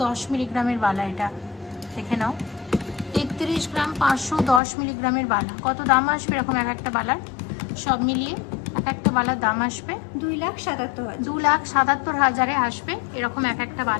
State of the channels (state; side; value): drops out; right; at 4.6 s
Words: মিলিগ্রামের বালা। এটা দেখে নাও, 33 গ্রাম 510 মিলিগ্রামের বালা। কত দাম আসবে এরকম এক একটা বালার? সব মিলিয়ে এক একটা বালার দাম আসবে 2,77,000। 2,77,000-এ আসবে এরকম এক একটা